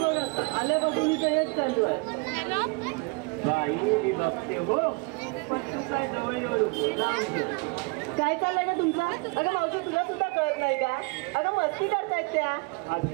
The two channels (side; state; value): left; quieter; 29.4 dB